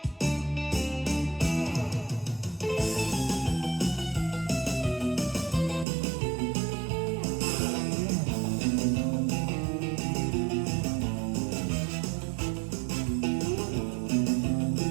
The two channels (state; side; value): drops out; left; at 5.9 s